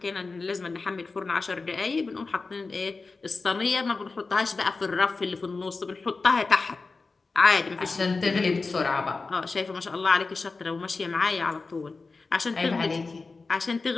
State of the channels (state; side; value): quieter; right; 4.0 dB